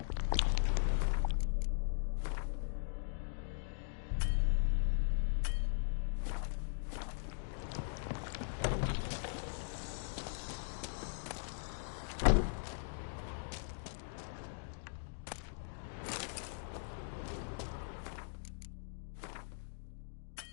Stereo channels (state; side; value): silent; right; digital silence